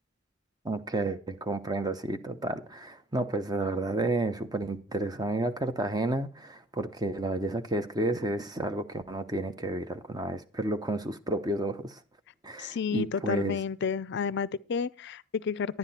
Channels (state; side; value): normal; both; correlation 0.46